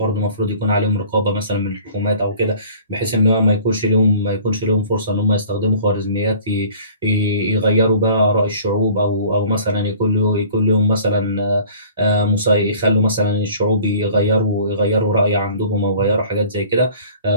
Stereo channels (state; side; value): inverted; both; correlation -0.49